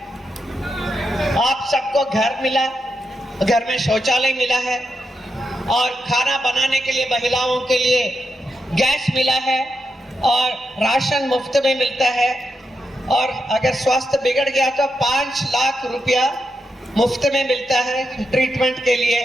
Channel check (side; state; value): both; normal; correlation 0.84